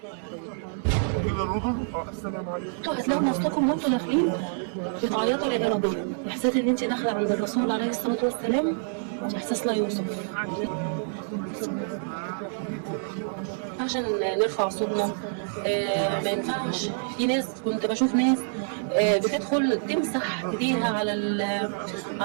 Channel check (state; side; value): silent; left; digital silence